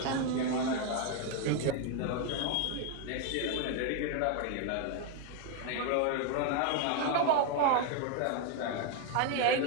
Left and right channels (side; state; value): both; different; correlation 0.01